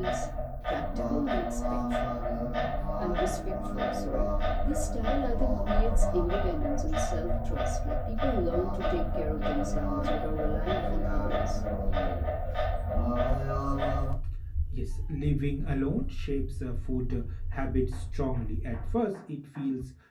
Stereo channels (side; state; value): both; identical; correlation 1.00